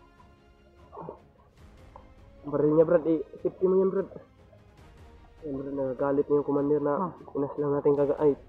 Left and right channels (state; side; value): identical; both; correlation 1.00